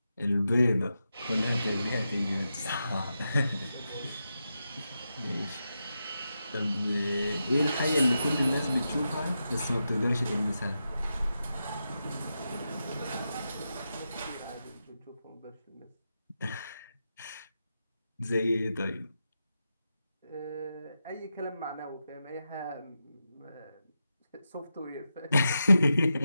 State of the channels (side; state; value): both; inverted; correlation -0.88